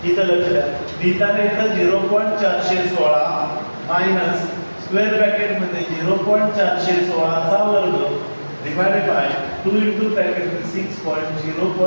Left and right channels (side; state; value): both; inverted; correlation -1.00